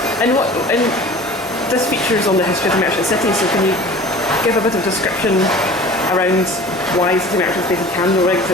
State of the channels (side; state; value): both; normal; correlation 0.42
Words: And this features on the history of the Merchant City, so can you give a bit of description around why City Merchant is based in Candleriggs